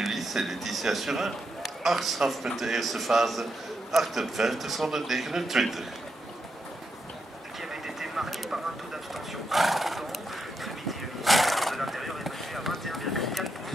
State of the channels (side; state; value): both; normal; correlation 0.83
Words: en Letitia Surin. 8 strafpunten eerste fase, 58 zonder 29. Qui avait été marqué par un taux d'abstention important. Ce midi, le ministère de l'Intérieur est passé à 21,4%